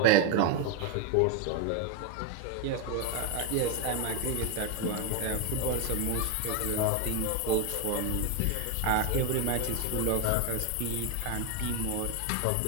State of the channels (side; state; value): both; different; correlation 0.01